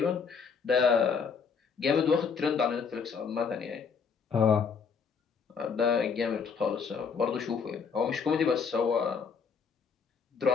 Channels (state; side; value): quieter; right; 5.9 dB